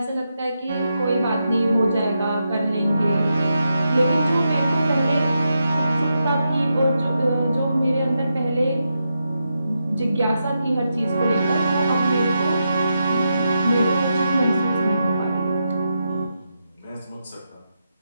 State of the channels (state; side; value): inverted; both; correlation -0.86